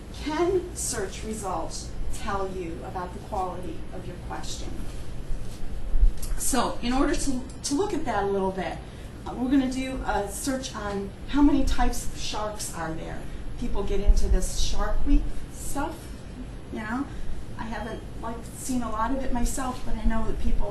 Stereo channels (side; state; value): both; identical; correlation 1.00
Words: can search results tell you about the quality of your question? So in order to look at that a little bit, we're going to do a search on how many types of sharks are there. People get into this Shark Week stuff, you know. I haven't seen a lot of it myself, but I know that